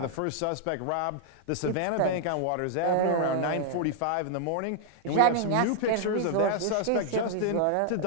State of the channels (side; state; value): both; different; correlation -0.01